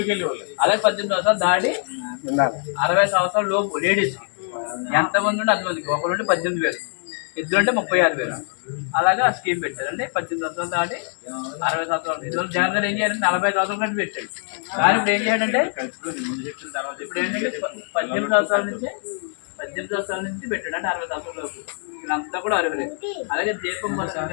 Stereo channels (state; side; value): silent; right; 55 dB below the other